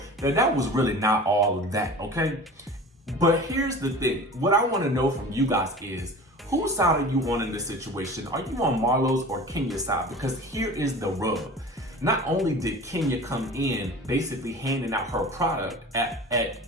that that was really not all of that, okay? But here's the thing. What I want to know from you guys is, whose side are you on in this situation? Are you on Marlo's or Kenya's side? Because here is the rub. Not only did Kenya come in basically handing out her product at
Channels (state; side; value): normal; both; correlation 0.38